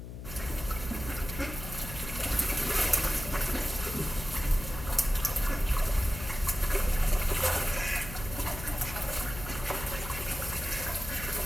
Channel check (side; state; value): left; noise; hum, 10 dB below the sound